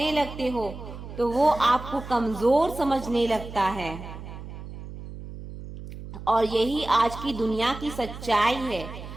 लगते हो तो वो आपको कमजोर समझने लगता है। और यही आज की दुनिया की सच्चाई है।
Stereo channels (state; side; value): noise; right; hum, 12 dB below the sound